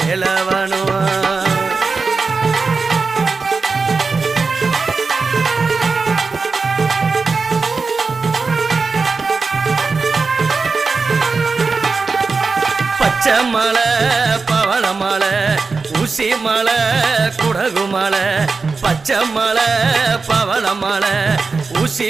பச்சைமலை பவளமலை ஊசிமலை குடகுமலை பச்சைமலை பவளமலை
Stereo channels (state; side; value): quieter; left; 4.4 dB